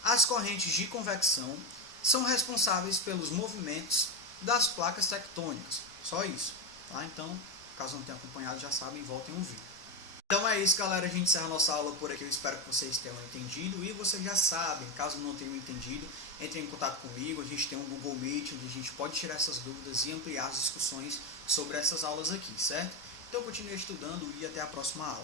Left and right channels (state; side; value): normal; both; correlation 0.14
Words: As correntes de convecção são responsáveis pelos movimentos das placas tectônicas. Só isso, tá? Então, caso não tenham acompanhado, já sabem, voltem a ouvir. Então é isso, galera, a gente encerra a nossa aula por aqui, eu espero que vocês tenham entendido, e vocês já sabem, caso não tenham entendido, entrem em contato comigo, a gente tem um Google Meet, onde a gente pode tirar essas dúvidas e ampliar as discussões sobre essas aulas aqui, certo? Então continue estudando e até a próxima